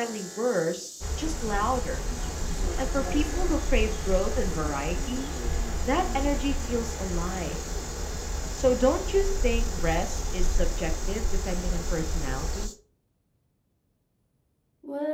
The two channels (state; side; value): identical; both; correlation 1.00